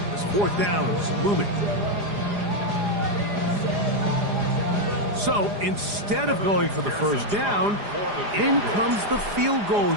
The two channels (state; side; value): late; left; 4.9 ms